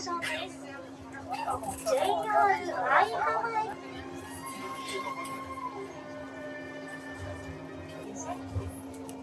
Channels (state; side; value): identical; both; correlation 1.00